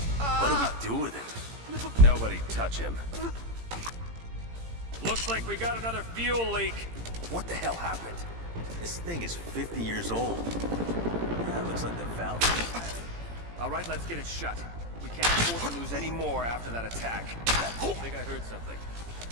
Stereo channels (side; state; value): left; late; 18 ms